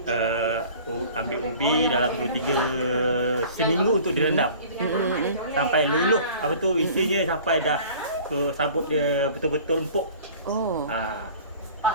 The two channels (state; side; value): inverted; both; correlation -0.46